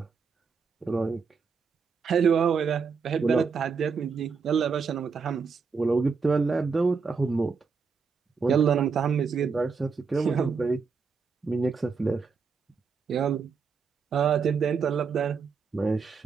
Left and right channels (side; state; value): left; quieter; 5.4 dB